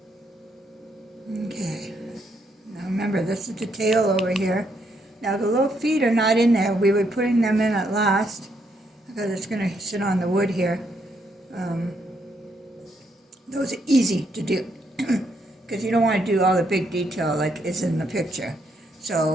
Okay. Now remember, this is the tail over here. Now the little feet are not in there. We were putting them in at last because it's going to sit on the wood here. Those are easy to do because you don't want to do all the big detail like is in the picture. So,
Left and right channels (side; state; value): both; normal; correlation 0.75